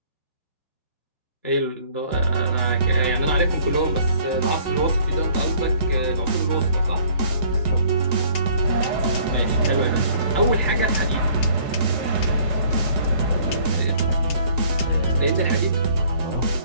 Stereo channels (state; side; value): inverted; both; correlation -0.56